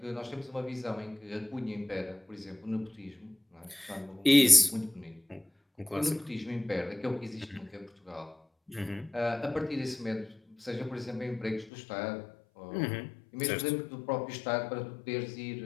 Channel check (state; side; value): drops out; right; at 11.7 s